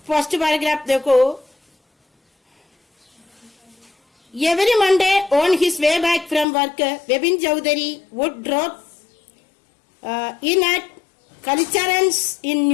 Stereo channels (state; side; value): drops out; right; at 6.5 s